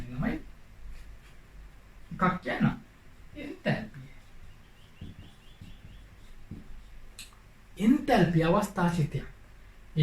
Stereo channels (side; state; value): both; identical; correlation 1.00